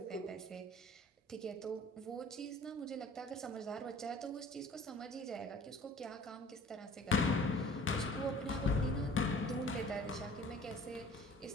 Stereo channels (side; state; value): both; normal; correlation 0.49